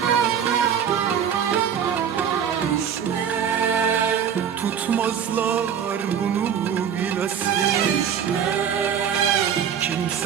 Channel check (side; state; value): left; quieter; 8.3 dB